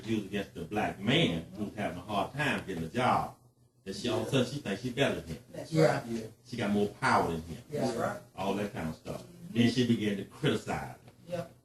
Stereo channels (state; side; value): identical; both; correlation 1.00